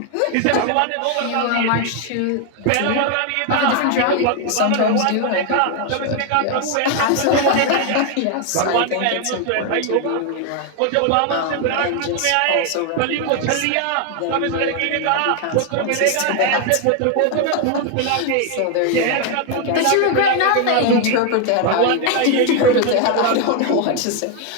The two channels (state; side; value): different; both; correlation 0.01